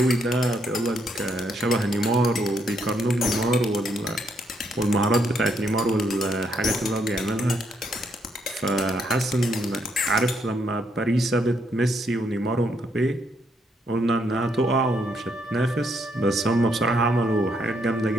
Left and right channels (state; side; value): normal; both; correlation 0.74